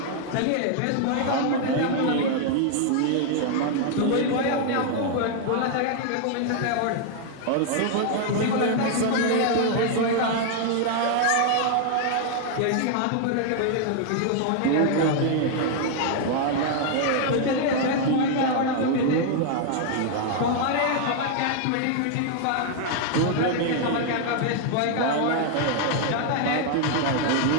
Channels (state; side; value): different; both; correlation 0.00